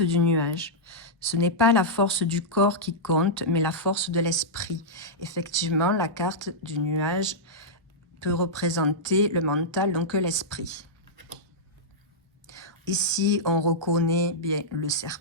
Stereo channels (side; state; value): both; normal; correlation -0.10